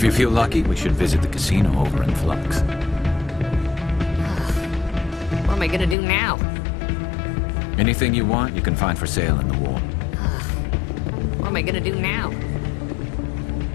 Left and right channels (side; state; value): right; drops out; at 6.0 s